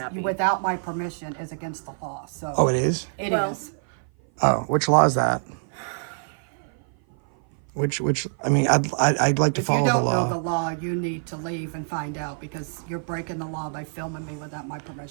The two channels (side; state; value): left; silent; 56 dB below the other